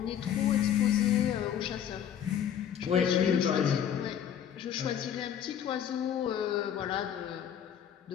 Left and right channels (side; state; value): right; quieter; 9.2 dB